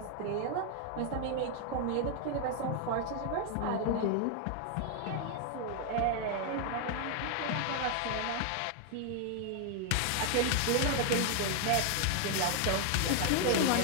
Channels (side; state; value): both; different; correlation 0.00